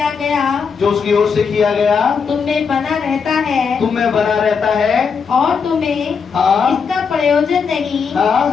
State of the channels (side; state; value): right; quieter; 5.9 dB